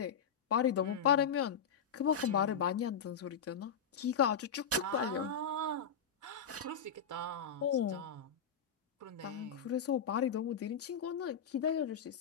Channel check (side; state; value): right; quieter; 6.7 dB